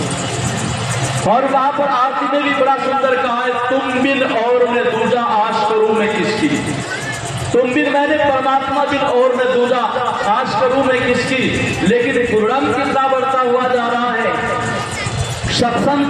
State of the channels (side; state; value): both; identical; correlation 1.00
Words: और वहां पर आरती ने भी बड़ा सुंदर कहा है, तुम बिन और मैं दूजा आश करूं मैं किसकी। तुम बिन मैंने परमात्मा बिन और मैं दूजा आश करूं मैं किसकी। लेकिन गुरुनाम कितना बढ़ता हुआ जा रहा है।